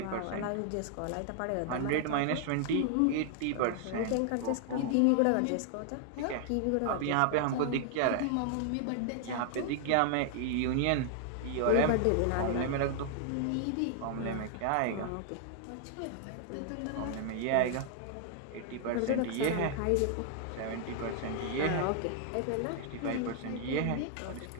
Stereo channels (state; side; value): different; both; correlation 0.00